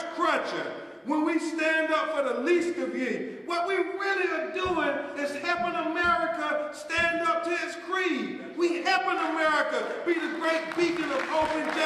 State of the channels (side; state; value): both; identical; correlation 1.00